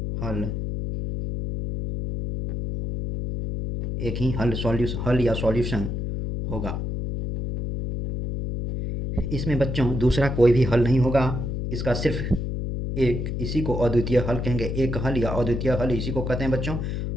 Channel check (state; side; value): noise; left; hum, 3 dB below the sound